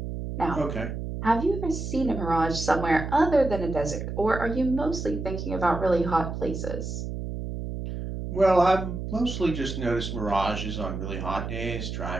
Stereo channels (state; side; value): noise; right; hum, 5 dB below the sound